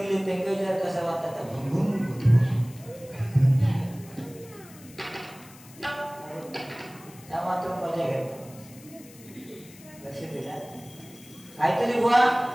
त्यांना विचार कसा वाटतात त्या भुंगुम भुंगुम. त्या मात्र मजा घ्या. लक्ष दिला काहीतरी बुवा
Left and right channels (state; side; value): noise; left; hiss, 21 dB below the sound